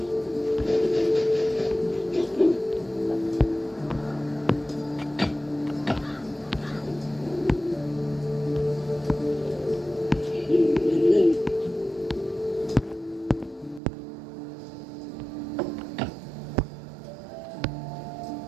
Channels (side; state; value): left; drops out; at 13.8 s